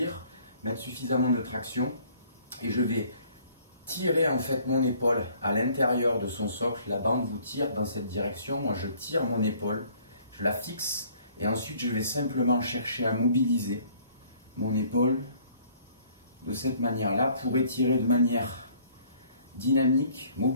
mettre suffisamment de traction et je vais tirer en fait mon épaule à l'intérieur de son socle. La bande vous tire dans cette direction, moi je tire mon épaule, je la fixe et ensuite je vais simplement chercher à mobiliser mon épaule de cette manière-là pour étirer de manière dynamique,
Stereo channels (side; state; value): both; inverted; correlation -0.59